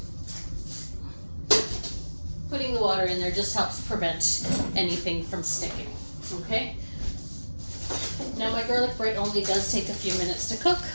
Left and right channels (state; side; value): inverted; both; correlation -1.00